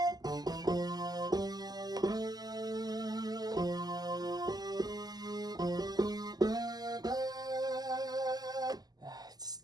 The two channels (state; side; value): late; left; 0.19 ms